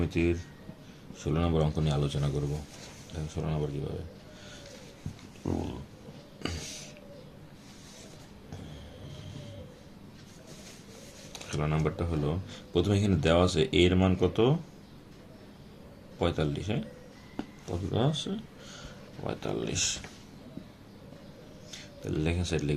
16 নম্বর অঙ্ক নিয়ে আলোচনা করব। দেখেন 16 নম্বর কীভাবে। 16 নম্বরটা হলো, প্রথমে এখানে দেওয়া আছে এর মান কত, 45। হ্যাঁ, কত দেওয়া আছে, 45। তাহলে লেখেন সাইড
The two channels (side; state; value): both; identical; correlation 1.00